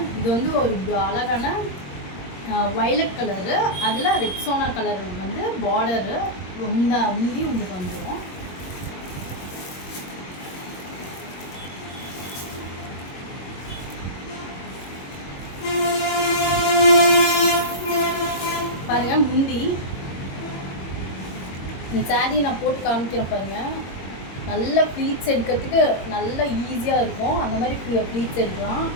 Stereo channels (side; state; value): right; late; 22 ms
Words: இது வந்து ஒரு அழகான வயலட் கலரு, அதில் ரெக்ஸோனா கலர் வந்து பார்டரு உந்தி உங்களுக்கு வந்துடும். பாருங்கள் முந்தி இந்த சாரீ நான் போட்டு காமிக்கிறேன் பாருங்கள். நல்ல ப்ளீட்ஸ் எடுக்கிறதுக்கு நல்ல ஈஸியாக இருக்கும். அந்த மாதிரி ப்ளீட்ஸ் எடுக்கலாம்.